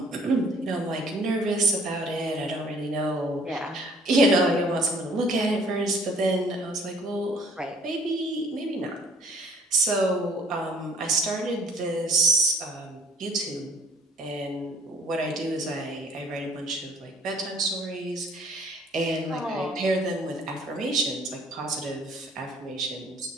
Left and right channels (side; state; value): both; normal; correlation 0.56